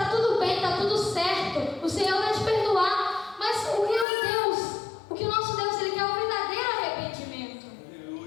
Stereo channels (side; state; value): right; drops out; at 4.0 s